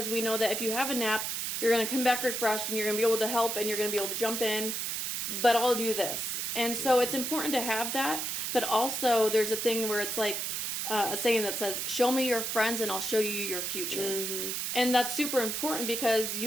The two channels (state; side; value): noise; right; hiss, 2 dB below the sound